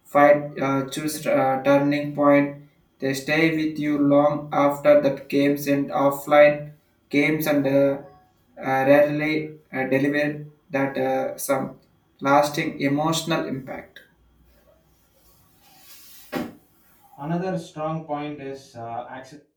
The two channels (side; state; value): both; identical; correlation 1.00